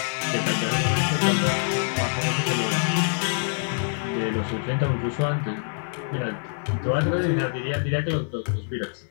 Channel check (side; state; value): right; silent; digital silence